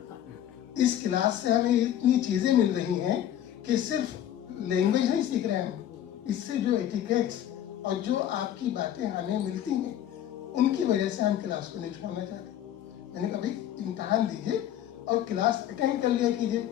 इस क्लास से हमें इतनी चीज़ें मिल रही हैं कि सिर्फ लैंग्वेज नहीं सीख रहे हैं हम, इससे जो एटिकेट्स और जो आपकी बातें हमें मिलती हैं उनकी वजह से हम क्लास को नहीं छोड़ना चाहते। मैंने कहा भाई इम्तहान दीजिए और क्लास अटेंड कर लिया कीजिए,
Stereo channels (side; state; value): right; quieter; 11.2 dB